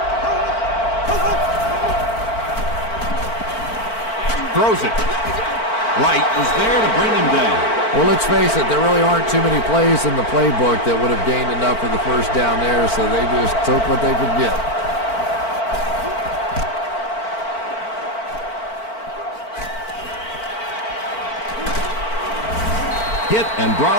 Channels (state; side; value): late; right; 4.5 ms